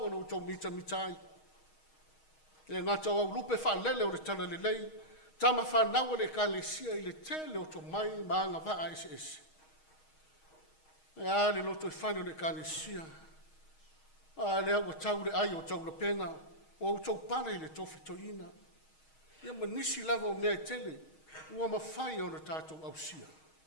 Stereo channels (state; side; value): late; right; 6.4 ms